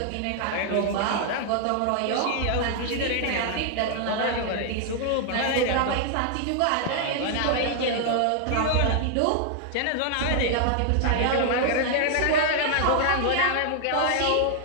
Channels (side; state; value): both; different; correlation 0.00